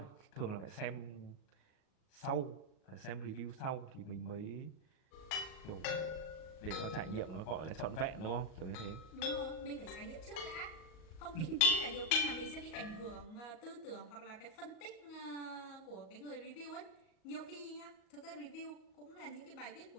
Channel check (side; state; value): right; late; 39 ms